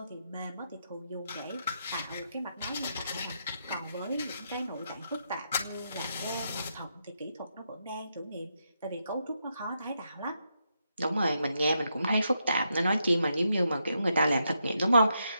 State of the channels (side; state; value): both; inverted; correlation -0.81